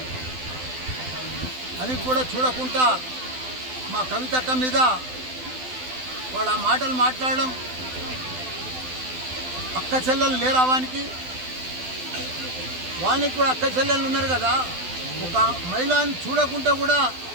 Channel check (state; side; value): late; left; 12 ms